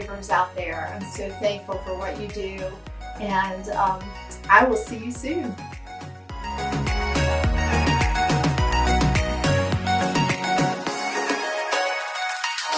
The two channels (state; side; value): identical; both; correlation 1.00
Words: out there, I'm so thankful for what you do, and I will see you soon.